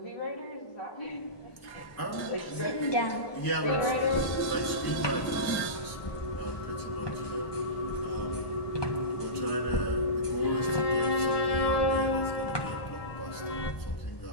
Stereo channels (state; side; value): late; right; 1.1 ms